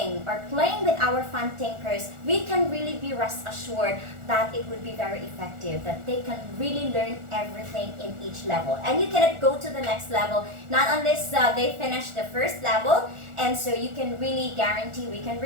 or playing with our fun tinkers, we can really be rest assured that it would be very effective, that they can really learn everything in each level. And you cannot go to the next level, not unless they finish the first level. And so you can really guarantee, we can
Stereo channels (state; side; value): late; left; 1.4 ms